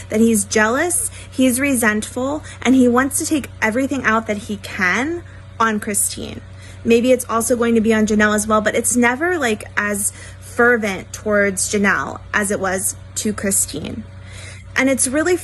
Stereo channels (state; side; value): identical; both; correlation 1.00